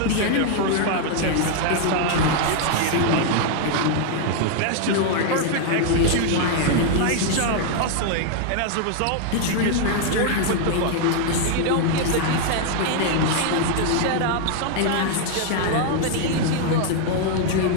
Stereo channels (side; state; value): both; different; correlation 0.00